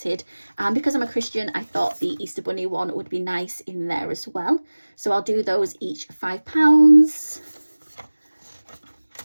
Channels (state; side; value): inverted; both; correlation -1.00